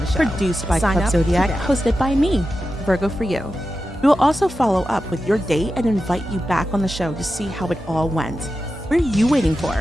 produced by Club Zodiac, hosted by me, Virgo for you. We will also follow up with your date and invite you back on the show to see how it all went. What are you waiting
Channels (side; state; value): both; normal; correlation 0.91